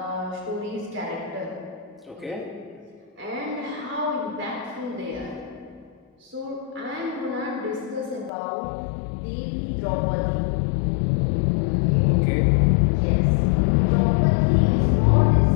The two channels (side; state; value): right; drops out; at 8.3 s